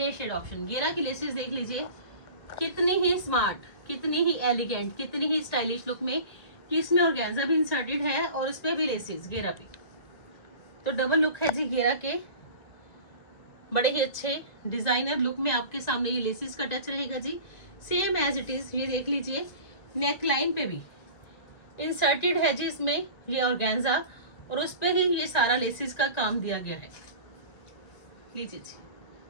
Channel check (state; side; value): late; right; 1.9 ms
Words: शेड ऑप्शन, घेरा की लेसेस देख लीजिए, कितनी ही स्मार्ट, कितनी ही एलिगेंट, कितनी ही स्टाइलिश लुक में, कि इसमें ऑर्गेन्जा भी इंसर्टेड है और इस पे भी लेसेस घेरा पे, तो डबल लुक है जी घेरा के। बड़े ही अच्छे डिजाइनर लुक में आपके सामने ये लेसेस का टच रहेगा जी, सेम एज इट इज। ये देख लीजिए, नेक लाइन पे भी इंसर्टेड है जी इसमें ये ऑर्गेन्जा, और उस पे ही ये सारा लेसेस का काम दिया गया है। लीजिए जी,